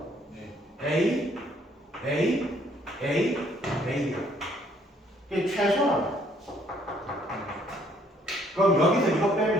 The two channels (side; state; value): both; normal; correlation 0.65